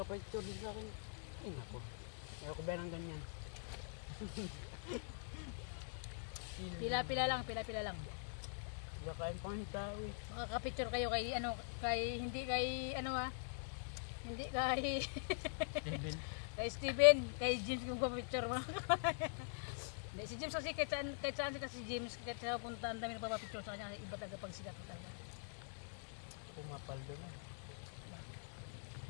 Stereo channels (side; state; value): right; silent; digital silence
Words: din sa akin. Ay nako. Ayaw ko ba ng ganyan? Pila-pila lang, pila-pila lang. Bakain pa ng tao eh. Makaka-picture kayo kay ano, hindi kay ano hindi kay Steven. kay Steven, kay James kung pa-picture mo. Hindi, si James kasi kahit saan si James, kahit sa punta ang dami nagpapapicture sa kanya, iba talaga pag sikat talaga. Pumapaldo na.